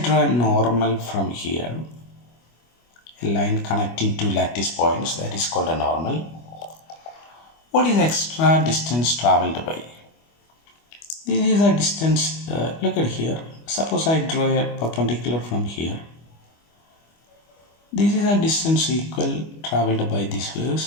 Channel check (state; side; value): late; right; 25 ms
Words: a normal from here, a line connecting two lattice points, that is called a normal. What is extra distance traveled by? This is a distance, look at here. Suppose I draw a perpendicular from here. This is a distance equal traveled by this